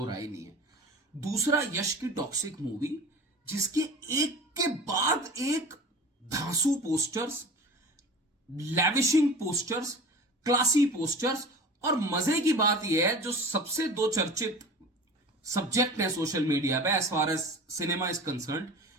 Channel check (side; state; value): both; normal; correlation 0.36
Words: राय नहीं है। दूसरा यश की टॉक्सिक मूवी, जिसके एक के बाद एक धांसू पोस्टर्स, लैविशिंग पोस्टर्स, क्लासी पोस्टर्स। और मजे की बात यह है, जो सबसे दो चर्चित सब्जेक्ट है सोशल मीडिया पे as far as cinema is concern,